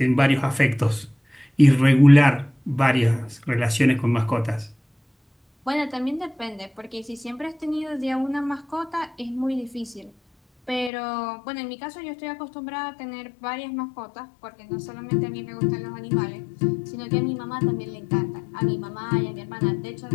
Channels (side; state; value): right; drops out; at 10.9 s